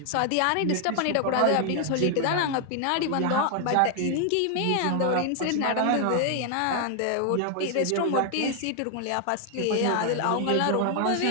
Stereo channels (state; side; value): different; both; correlation 0.00